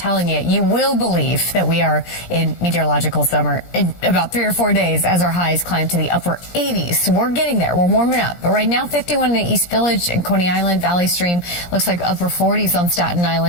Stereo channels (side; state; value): right; late; 17 ms